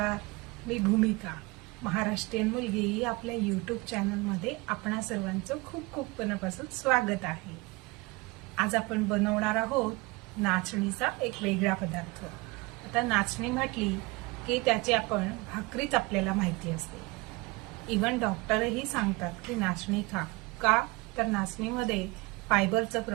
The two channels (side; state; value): left; quieter; 24.4 dB